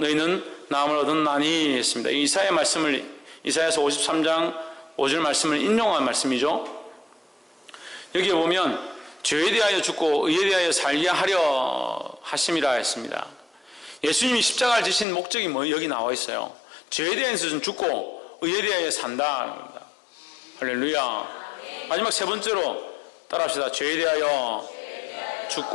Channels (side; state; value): right; drops out; at 15.1 s